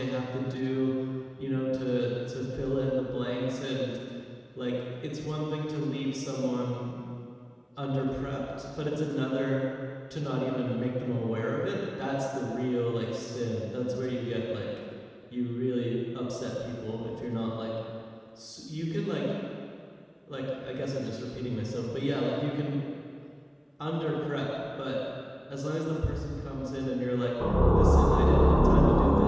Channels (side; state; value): both; identical; correlation 1.00